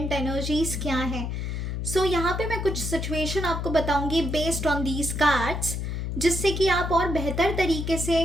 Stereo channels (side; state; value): left; noise; hum, 3 dB below the sound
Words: एनर्जीज क्या है। सो यहाँ पे मैं कुछ सिचुएशन आपको बताऊंगी बेस्ड ऑन दीज कार्ड्स, जिससे कि आप और बेहतर तरीके